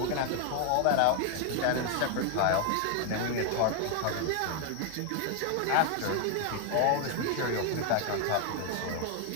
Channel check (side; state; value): both; different; correlation 0.01